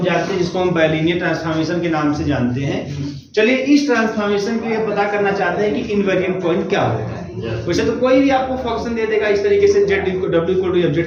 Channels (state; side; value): identical; both; correlation 1.00